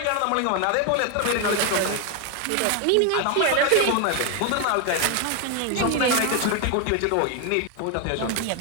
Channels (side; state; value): both; different; correlation 0.01